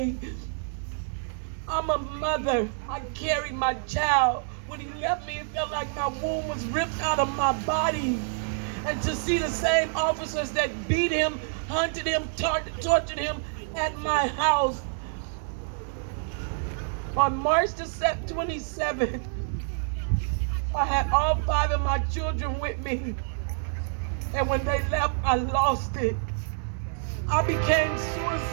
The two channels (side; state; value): left; silent; digital silence